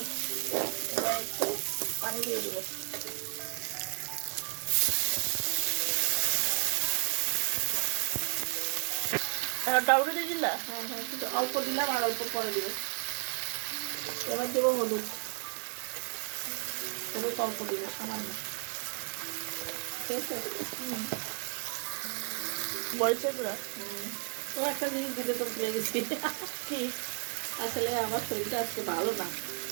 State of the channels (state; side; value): quieter; left; 39.2 dB